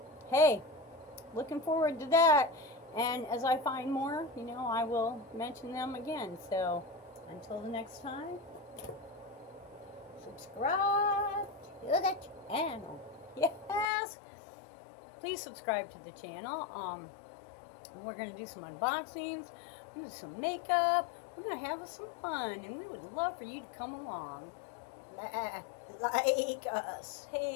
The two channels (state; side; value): drops out; right; at 13.9 s